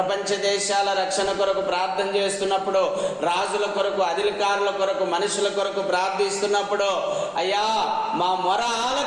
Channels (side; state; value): both; identical; correlation 1.00